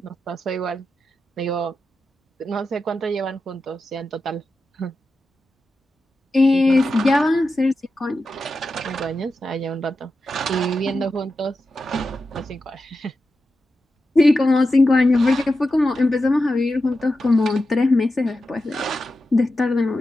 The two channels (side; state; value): both; normal; correlation 0.90